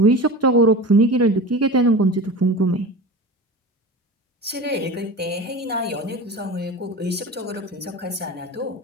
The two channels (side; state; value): both; normal; correlation 0.32